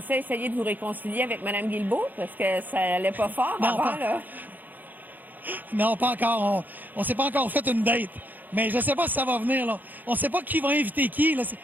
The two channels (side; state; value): left; late; 0.085 ms